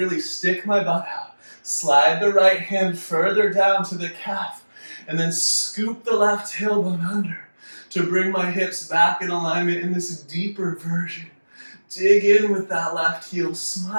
stick my butt out. Slide the right hand further down to the calf. And then scoop the left tailbone under to bring my hips back in alignment in this deeper version. Dig in with that left heel.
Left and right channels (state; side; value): inverted; both; correlation -1.00